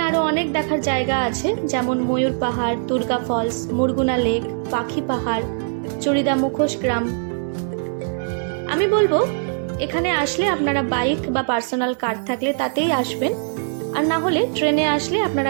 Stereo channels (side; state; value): left; silent; digital silence